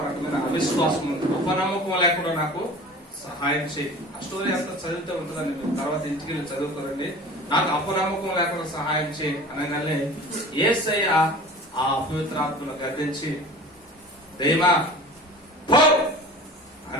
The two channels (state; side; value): normal; both; correlation 0.40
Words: రకమైన అవిశ్వాసం ఉంది, అపనమ్మకం లేకుండా నాకు సహాయం చేయి. ఆ స్టోరీ అంతా చదివితే ఉంటుందండి, మీరు తర్వాత ఇంటికి వెళ్ళి చదువుకోరండి. నాకు అపనమ్మకం లేకుండా సహాయం చేయి అనగానే యేసయ్య ఆ అపవిత్రాత్మను గర్దించి దైవా పో